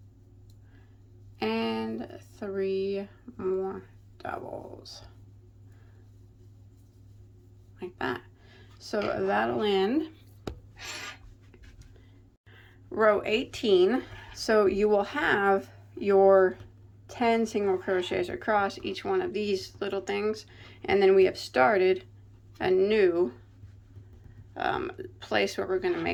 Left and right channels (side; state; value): both; identical; correlation 1.00